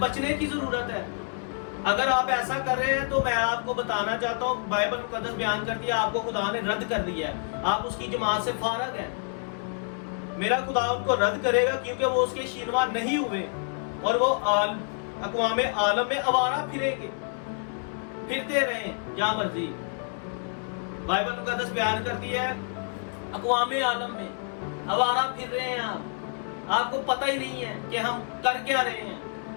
کی ضرورت ہے۔ اگر آپ ایسا کر رہے ہیں تو میں آپ کو بتانا چاہتا ہوں، بائبل مقدس بیان کرتی ہے آپ کو خدا نے رد کر دیا ہے، آپ اس کی جماعت سے فارغ ہیں۔ میرا خدا ان کو رد کرے گا کیونکہ وہ اس کے شینوا نہیں ہوئے، اور وہ اقوام عالم میں آوارہ پھریں گے، پھرتے رہیں جہاں مرضی۔ بائبل مقدس بیان کرتی ہے اقوام عالم میں آوارہ پھر رہے ہیں آپ کو پتہ ہی نہیں ہے کہ ہم کر کیا رہے ہیں۔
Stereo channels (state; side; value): silent; right; 56 dB below the other